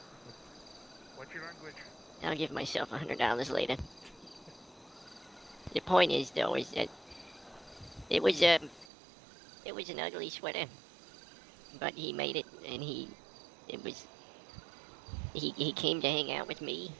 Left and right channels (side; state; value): left; drops out; at 8.8 s